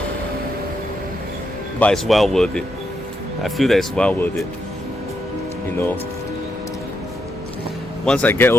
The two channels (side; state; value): both; normal; correlation 0.81